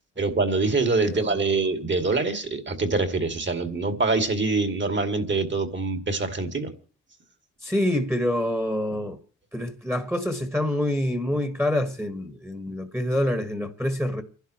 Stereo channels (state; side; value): normal; both; correlation 0.48